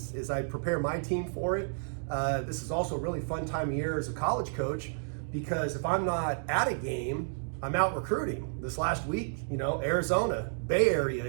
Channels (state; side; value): silent; left; digital silence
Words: I prepare my team for it, this is also a really fun time of year as a college coach, because if I'm not at a game, I'm out recruiting. This last week, Arizona, Bay Area,